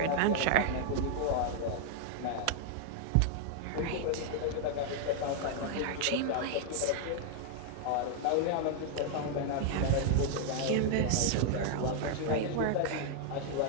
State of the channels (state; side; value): different; both; correlation 0.00